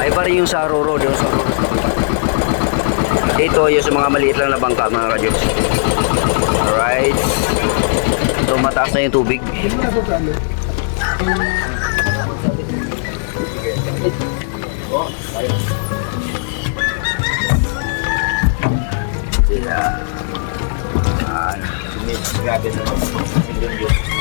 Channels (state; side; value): silent; right; digital silence